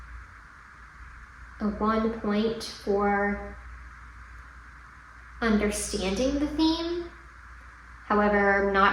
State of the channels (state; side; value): identical; both; correlation 1.00